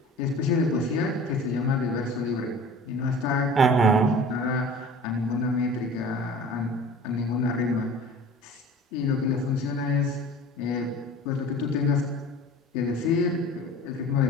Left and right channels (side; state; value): both; normal; correlation 0.42